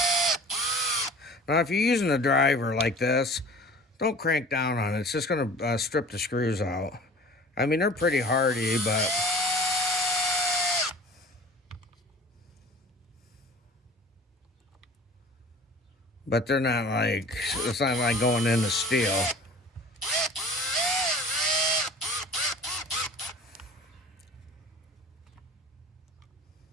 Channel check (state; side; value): normal; both; correlation 0.43